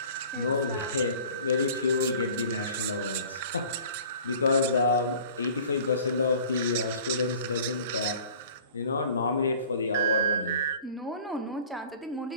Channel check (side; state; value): both; inverted; correlation -0.47